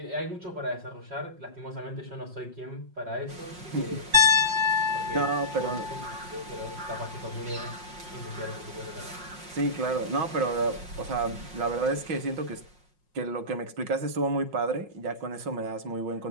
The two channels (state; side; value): late; left; 5.5 ms